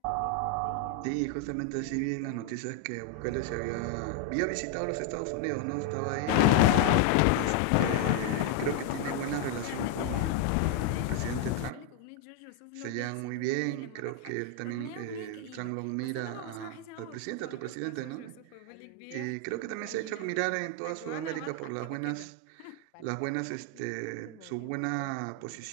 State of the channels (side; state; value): both; different; correlation 0.00